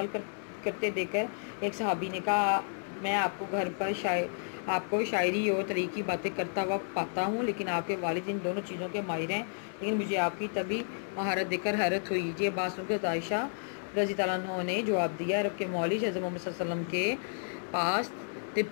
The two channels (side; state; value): right; silent; digital silence